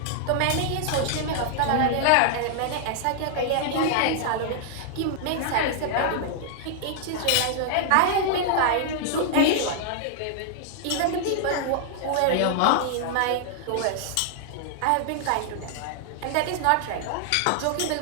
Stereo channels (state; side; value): different; both; correlation -0.01